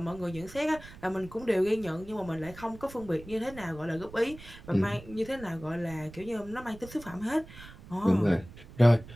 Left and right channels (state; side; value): noise; right; rumble, 17 dB below the sound